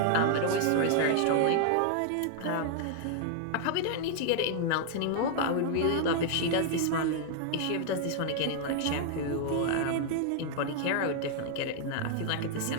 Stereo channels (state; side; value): different; both; correlation 0.00